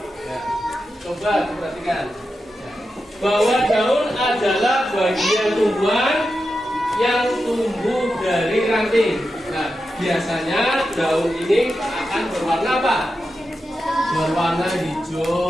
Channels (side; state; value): both; normal; correlation 0.90